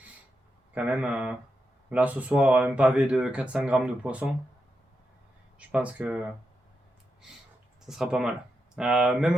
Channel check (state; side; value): normal; both; correlation 0.86